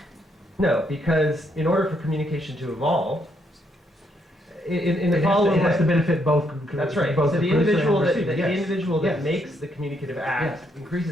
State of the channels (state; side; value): normal; both; correlation 0.74